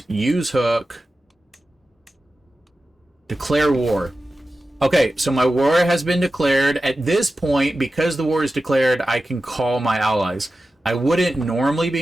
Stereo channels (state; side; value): normal; both; correlation 0.93